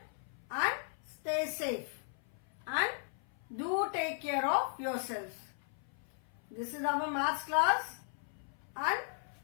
and stay safe and do take care of yourselves. This is our maths class and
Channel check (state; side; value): silent; right; 53 dB below the other